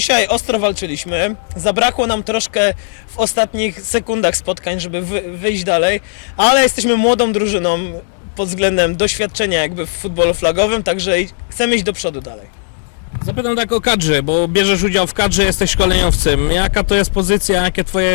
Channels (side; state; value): right; silent; digital silence